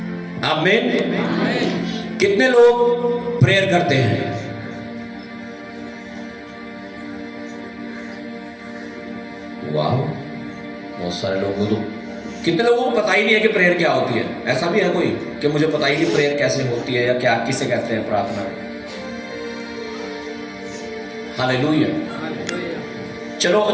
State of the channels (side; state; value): both; identical; correlation 1.00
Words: आमीन। कितने लोग प्रेयर करते हैं? वाह, बहुत सारे लोगों को। कितने लोगों को पता ही नहीं है कि प्रेयर क्या होती है? ऐसा भी है कोई कि मुझे पता ही नहीं प्रेयर कैसे होती है या क्या किसे कहते हैं प्रार्थना? हालेलुया। चलो